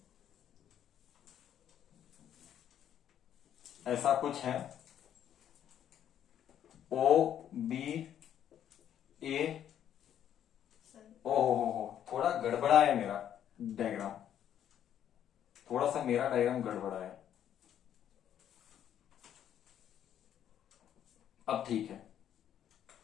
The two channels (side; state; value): right; quieter; 10.1 dB